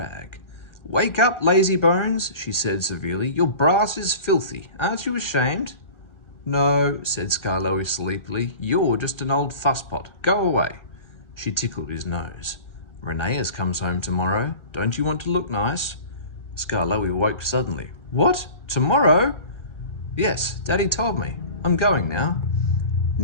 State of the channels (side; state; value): right; late; 1.4 ms